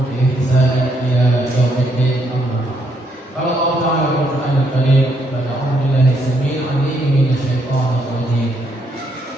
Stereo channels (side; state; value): both; normal; correlation 0.74